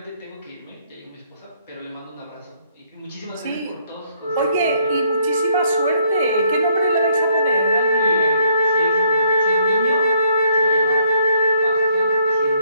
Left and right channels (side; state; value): both; inverted; correlation -0.68